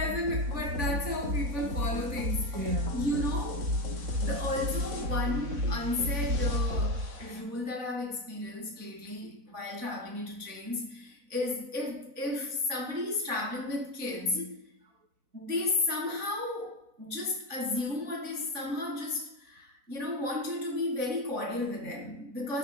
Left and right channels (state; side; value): late; left; 4.0 ms